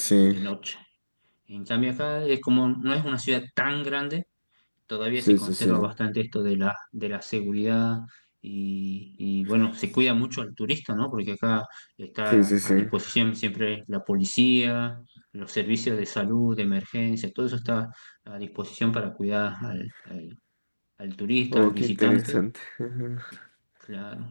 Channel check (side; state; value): both; inverted; correlation -1.00